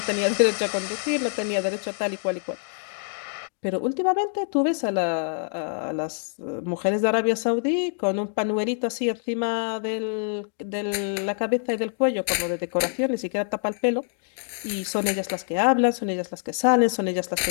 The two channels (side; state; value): right; silent; digital silence